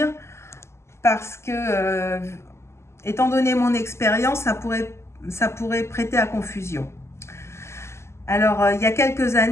parce que, étant donné mon expérience, ça pourrait prêter à confusion. Alors, il y a quelques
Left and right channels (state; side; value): late; right; 0.13 ms